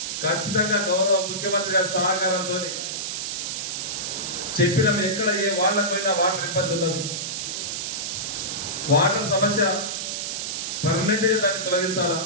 ఖచ్చితంగా గౌరవ ముఖ్యమంత్రి గారి సహకారంతో చెప్పినాం. ఎక్కడ ఏ వాళ్ళకైనా వాటర్ ఇబ్బంది ఉన్నది, వాటర్ సమస్య పర్మనెంట్గా దాన్ని తొలగించాలా,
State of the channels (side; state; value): right; noise; hiss, 3 dB below the sound